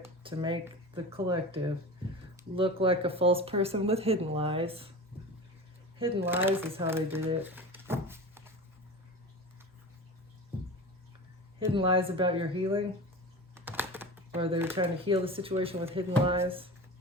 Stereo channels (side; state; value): both; normal; correlation 0.31